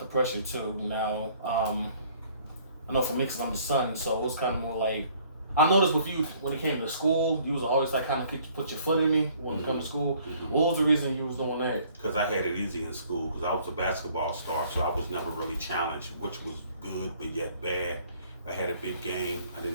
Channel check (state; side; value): inverted; both; correlation -0.59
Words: pressure too. Now, I know for me, because I'm the son, so it was kind of more like. I noticed with you when it came to school, you was always like kind of put your foot in me when it comes to school. What was the reason you was doing that? Because I had it easy in school. Because I was a basketball star, so I was never really challenged, which was good but yet bad. I had a big game. I